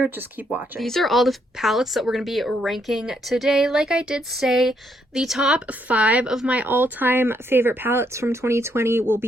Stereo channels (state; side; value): normal; both; correlation 0.74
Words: just keep watching. These are all the palettes that we're going to be ranking today. Like I did say, the top 5 of my all-time favorite palettes from 2020 will